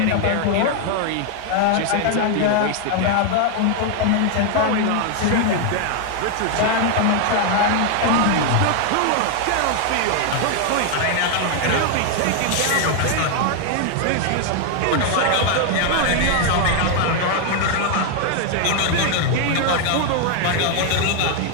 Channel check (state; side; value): different; both; correlation 0.00